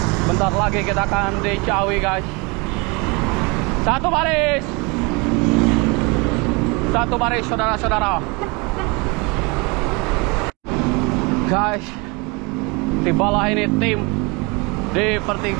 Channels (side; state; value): left; quieter; 28.5 dB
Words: Bentar lagi kita akan di Ciawi guys. Satu baris saudara-saudara. Guys, tibalah ini tim di